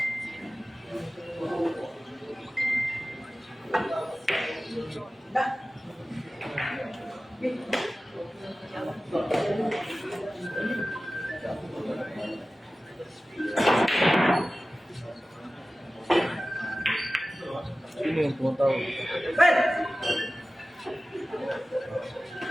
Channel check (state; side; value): normal; both; correlation 0.96